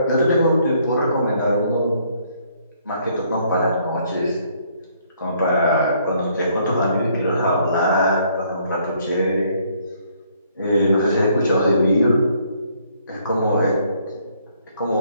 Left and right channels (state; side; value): inverted; both; correlation -0.66